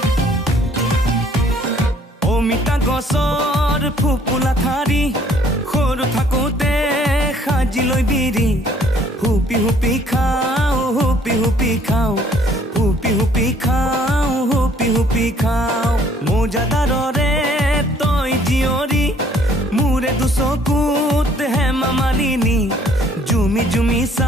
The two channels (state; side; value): normal; both; correlation 0.60